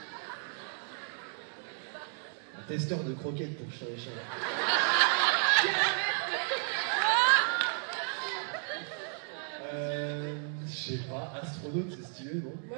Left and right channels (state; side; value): silent; left; 56 dB below the other